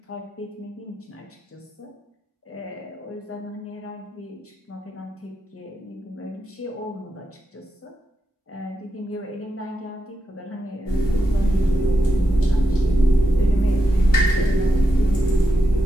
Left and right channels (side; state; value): both; normal; correlation 0.86